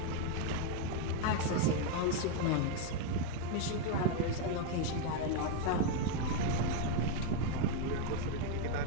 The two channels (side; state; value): both; different; correlation 0.01